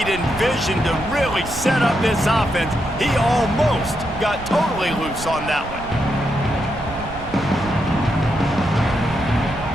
and vision to really set up this offense. He almost got totally loose on that one.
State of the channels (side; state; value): right; noise; rumble, 13 dB below the sound